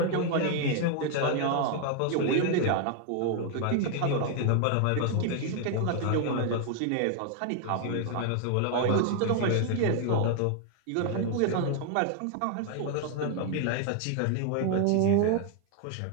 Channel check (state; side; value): different; both; correlation 0.00